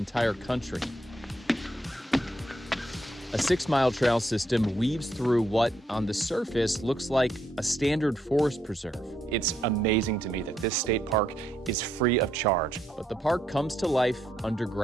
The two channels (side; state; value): both; normal; correlation 0.76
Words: country. A 6-mile trail system weaves through what, on the surface, looks like a standard forest preserve. It's amazing to me that this state park is free of charge. But the park comes to life